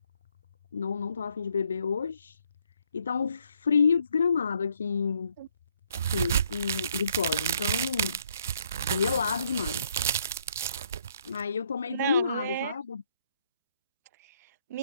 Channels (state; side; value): inverted; both; correlation -0.69